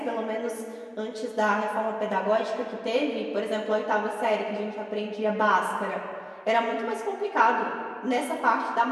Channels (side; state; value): both; identical; correlation 1.00